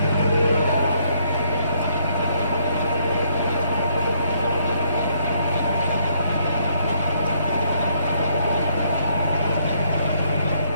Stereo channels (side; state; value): both; inverted; correlation -0.70